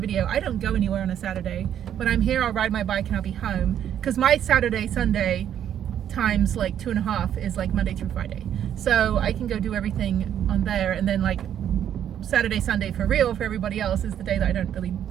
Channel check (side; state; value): left; quieter; 9.9 dB